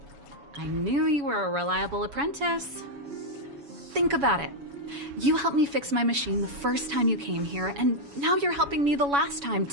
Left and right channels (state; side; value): late; left; 7.1 ms